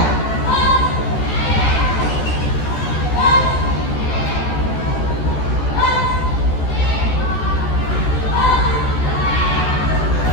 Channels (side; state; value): right; late; 14 ms